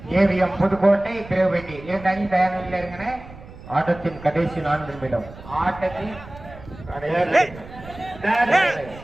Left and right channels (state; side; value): noise; right; rumble, 17 dB below the sound